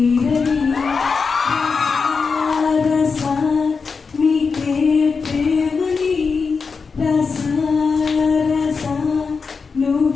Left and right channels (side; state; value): right; quieter; 5.0 dB